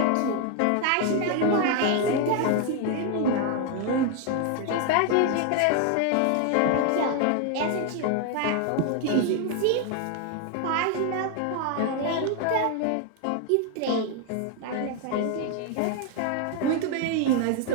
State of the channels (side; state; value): both; different; correlation 0.01